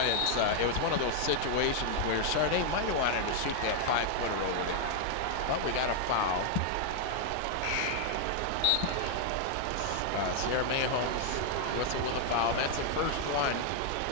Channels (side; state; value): both; different; correlation 0.00